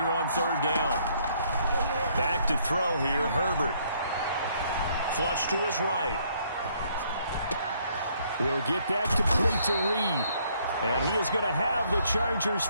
on third down. Back to throw here, Herbert. Flush to his right. He'll get that complete to Reed. And he is going to have the Chargers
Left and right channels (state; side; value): inverted; both; correlation -0.67